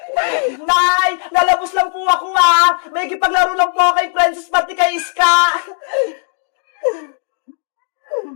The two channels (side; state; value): right; silent; digital silence